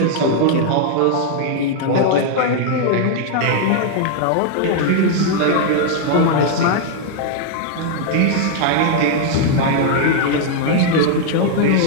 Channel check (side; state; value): both; different; correlation 0.00